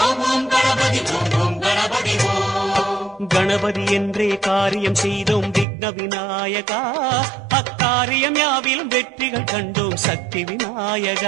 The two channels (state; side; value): drops out; left; at 5.7 s